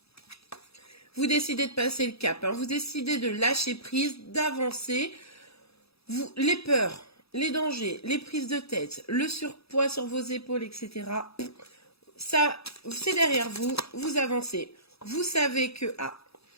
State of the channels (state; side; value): late; right; 0.77 ms